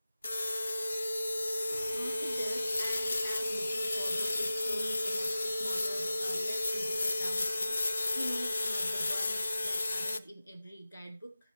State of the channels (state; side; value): inverted; both; correlation -0.95